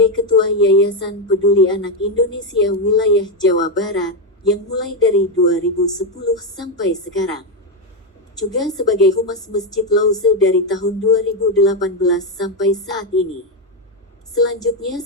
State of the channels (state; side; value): normal; both; correlation 0.06